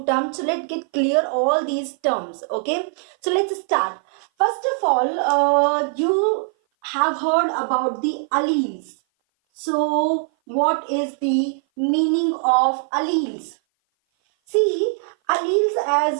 terms, so let's get clear all these terms. Okay, so let's start. First of all, you have heard about the alleles. So what is the meaning of alleles? See, alleles,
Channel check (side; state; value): left; silent; 57 dB below the other